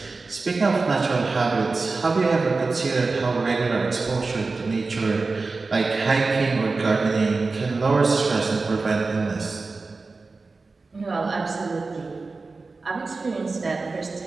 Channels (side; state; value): left; quieter; 3.9 dB